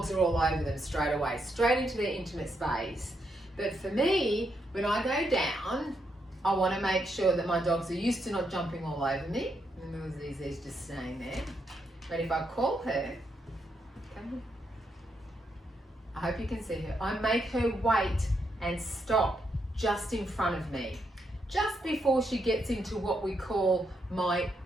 are all over them straight away, straight into their intimate space. But for me, when I go down, I want to make sure that my dogs are used to not jumping all over me. And Zizi's just staying there. But if I call her, come here. I hope you can see her. I make her wait and stop just in front of me, just before she gets into what we call my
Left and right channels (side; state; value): both; normal; correlation 0.79